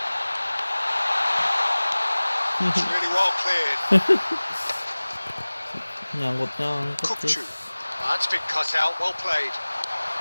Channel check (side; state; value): both; inverted; correlation -1.00